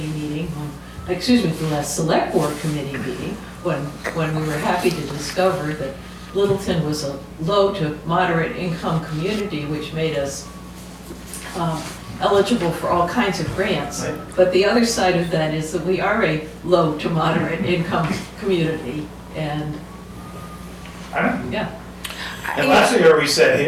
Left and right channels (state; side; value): identical; both; correlation 1.00